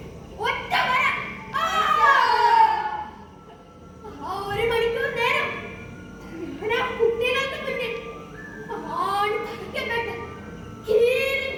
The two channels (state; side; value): identical; both; correlation 1.00